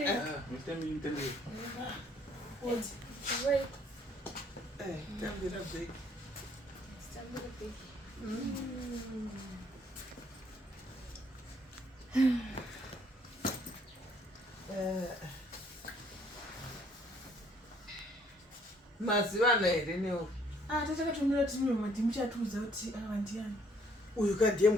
Titambire. Wait. Tambira big. Tambira big. Maziva here newo. Tatakatumira kuti mimi mati muchatuudza kuti ndiani. Uyu kadhiye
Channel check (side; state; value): both; normal; correlation 0.64